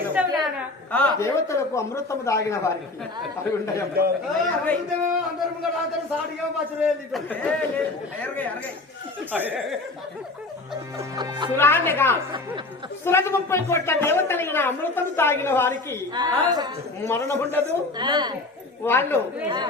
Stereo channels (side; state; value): right; quieter; 3.2 dB